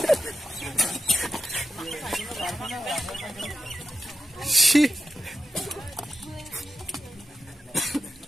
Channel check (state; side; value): normal; both; correlation 0.86